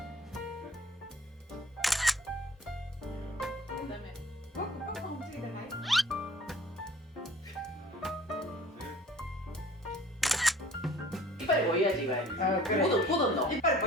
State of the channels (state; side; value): normal; both; correlation 0.50